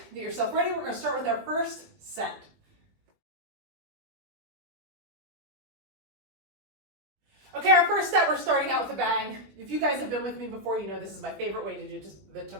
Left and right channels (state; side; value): late; left; 20 ms